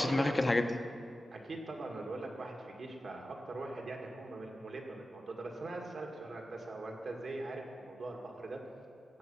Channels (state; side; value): normal; both; correlation 0.93